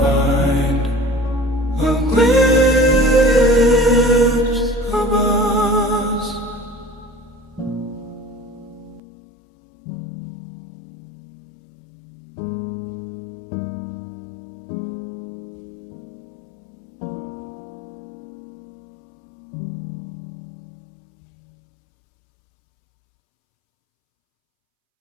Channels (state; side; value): drops out; right; at 9.0 s